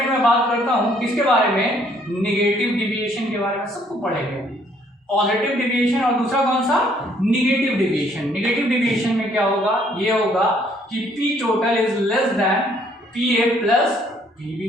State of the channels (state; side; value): normal; both; correlation 0.64